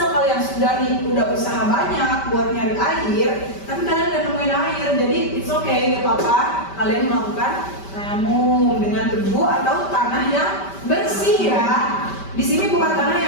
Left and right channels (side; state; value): right; late; 5.1 ms